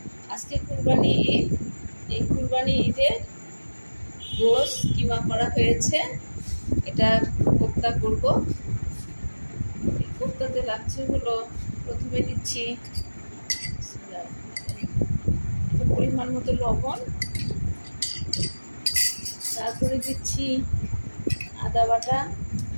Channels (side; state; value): both; inverted; correlation -1.00